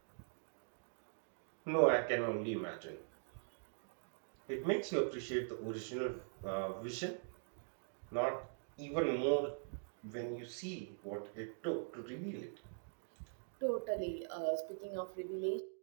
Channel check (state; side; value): silent; left; digital silence